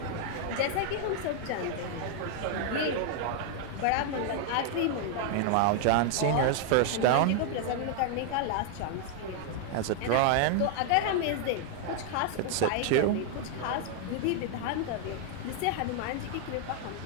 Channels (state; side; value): different; both; correlation 0.00